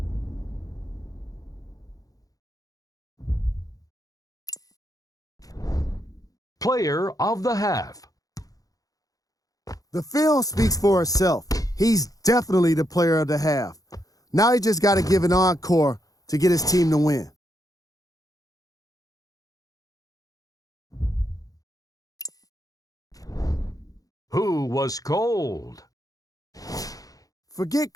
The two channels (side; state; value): right; late; 0.17 ms